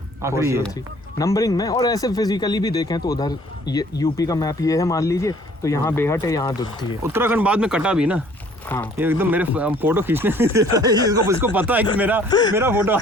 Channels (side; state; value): both; normal; correlation 0.56